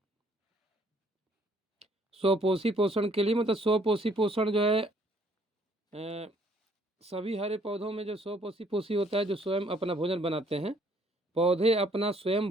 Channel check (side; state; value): both; normal; correlation 0.63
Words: स्वपोषी पोषण के लिए मतलब स्वपोषी पोषण जो है, सभी हरे पौधों में जो स्वपोषी पोषी होता है, जो स्वयं अपना भोजन बनाते हैं, पौधे अपना स्वयं